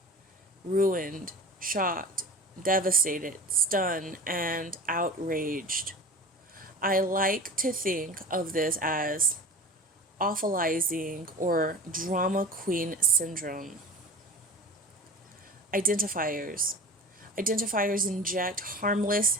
ruined, shocked, devastated, stunned, and outraged. I like to think of this as awfulizing or drama queen syndrome. Identifiers. Identifiers inject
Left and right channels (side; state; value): both; normal; correlation 0.35